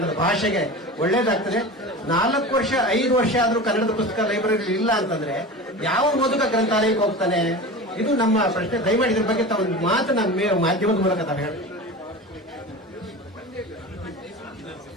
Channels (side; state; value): both; normal; correlation 0.31